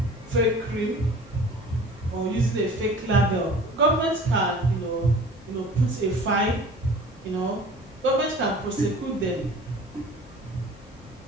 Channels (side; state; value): both; normal; correlation 0.44